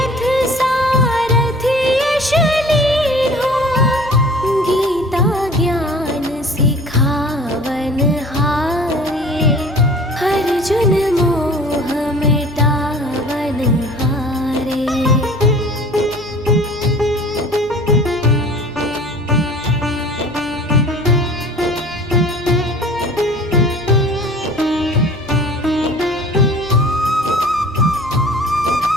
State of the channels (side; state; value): right; noise; hum, 23 dB below the sound